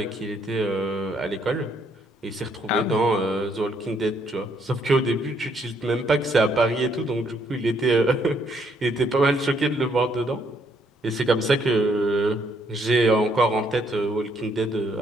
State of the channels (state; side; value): normal; both; correlation 0.70